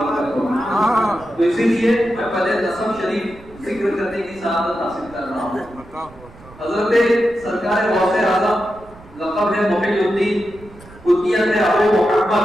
ہوگی۔ تو اسی لیے میں پہلے نسب شریف ذکر کرنے کی سعادت حاصل کر رہا ہوں۔ حضرت سرکار غوث اعظم لقب ہے محی الدین، کنیت ہے ابو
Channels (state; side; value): noise; right; rumble, 22 dB below the sound